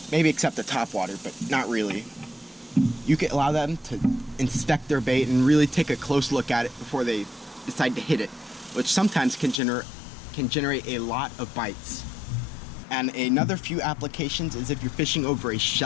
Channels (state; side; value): drops out; right; at 9.6 s